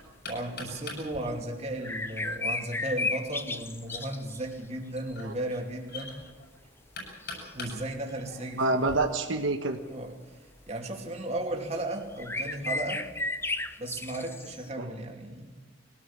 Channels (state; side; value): normal; both; correlation 0.08